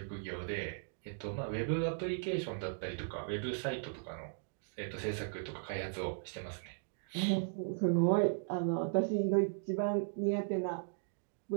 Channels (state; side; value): silent; left; digital silence